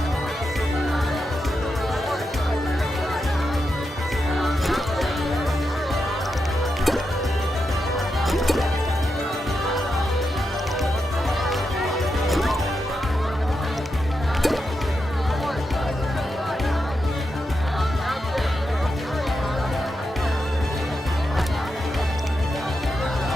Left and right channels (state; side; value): normal; both; correlation 0.86